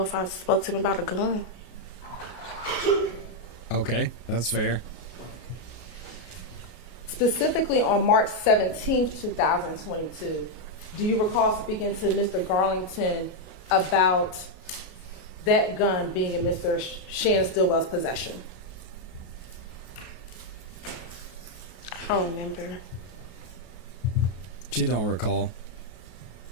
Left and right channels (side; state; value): right; late; 33 ms